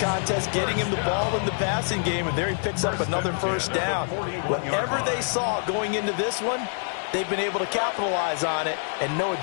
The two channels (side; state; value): right; silent; 59 dB below the other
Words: getting him the ball in the passing game, and there he picks up another 1st down. Whatever they saw going into this one, they've been able to capitalize on it, and no